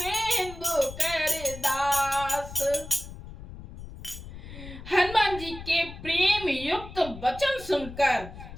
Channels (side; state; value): left; noise; rumble, 13 dB below the sound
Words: कर दास। हनुमान जी के प्रेम युक्त वचन सुनकर